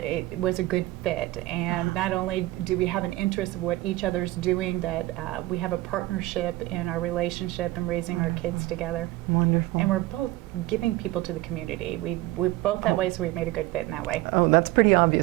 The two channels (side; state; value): left; quieter; 18.3 dB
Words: was a good fit, and not only do we have an interest of what each other's doing, that we have a partnership in our relationship and raising our kids together. Wonderful. And we're both giving people to the community. We're both that way, so we've made a good fit in that way. Oh, that's pretty